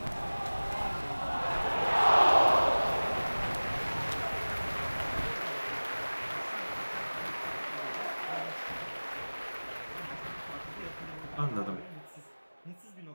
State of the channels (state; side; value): inverted; both; correlation -1.00